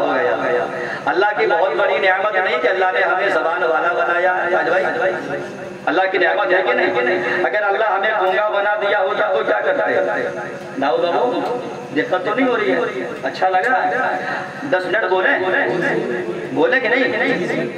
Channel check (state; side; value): identical; both; correlation 1.00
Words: گیا۔ اللہ کی بہت بڑی نعمت نہیں کہ اللہ نے ہمیں زبان والا بنایا ہے؟ اللہ کی نعمت ہے کہ نہیں؟ اگر اللہ ہمیں گونگا بنا دیا ہوتا تو کیا کرتے؟ داؤ بابو دقت تو نہیں ہو رہی ہے؟ اچھا لگ رہا ہے؟ 10 منٹ بولے کہ